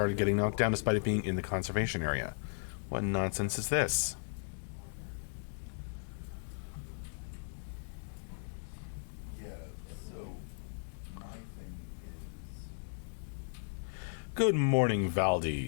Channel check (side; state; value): right; silent; digital silence